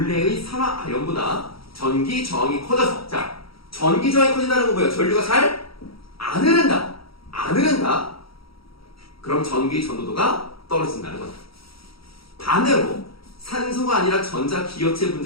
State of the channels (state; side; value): late; right; 0.75 ms